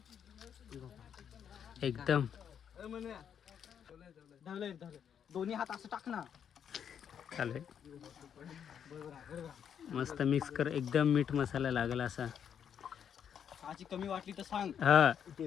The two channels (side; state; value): right; quieter; 8.3 dB